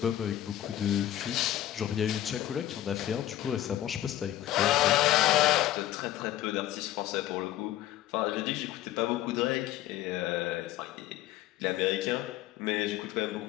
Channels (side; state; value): right; quieter; 13.5 dB